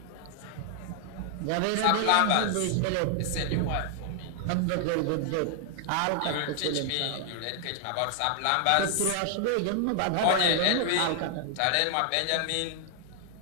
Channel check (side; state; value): both; different; correlation 0.00